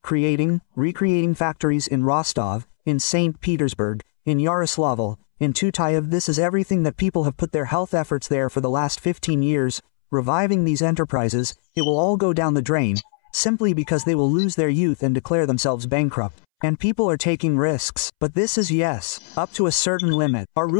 recreating factories in Rostov, in St. Petersburg, in Yaroslavl, in Tutayev, this is everything that people have put their health efforts there for the last 15 years, reviving these enterprises, it will all go down the drain, simply because they will lose their youth and declare themselves bankrupt. And people are taking risks, but this is yes, up to a certain limit. Our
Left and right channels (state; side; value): silent; right; 65 dB below the other